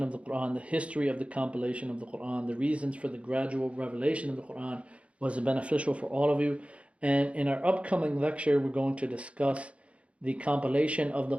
of the Quran, the history of the compilation of the Quran, the reasons for the gradual revelation of the Quran was beneficial for all of you. And in our upcoming lecture, we're going to discuss the compilation of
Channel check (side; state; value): left; late; 0.062 ms